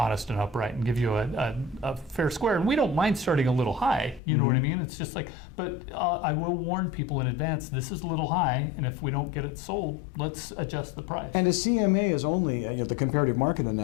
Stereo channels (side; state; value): right; drops out; at 4.2 s